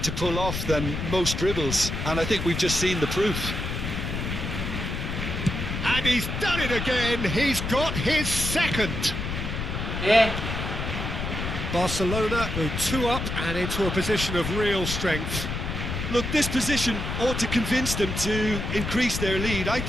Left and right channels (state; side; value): noise; left; rumble, 4 dB below the sound